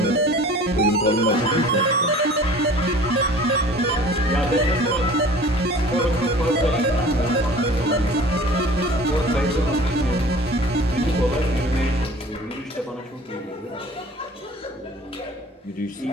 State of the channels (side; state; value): both; normal; correlation 0.46